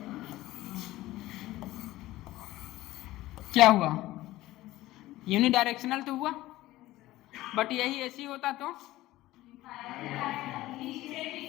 क्या हुआ, यूनिडायरेक्शनल तो हुआ, बट यही ऐसी होता तो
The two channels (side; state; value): right; quieter; 16.7 dB